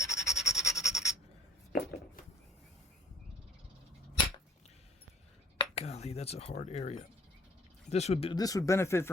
Golly, that's a hard area. This would benefit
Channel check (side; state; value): both; normal; correlation 0.57